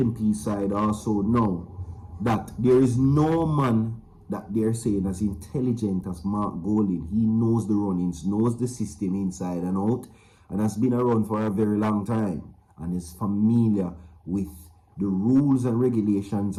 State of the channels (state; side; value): identical; both; correlation 1.00